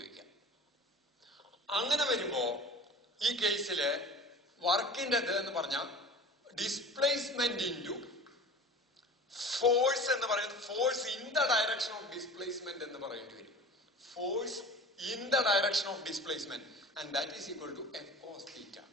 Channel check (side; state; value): both; normal; correlation 0.39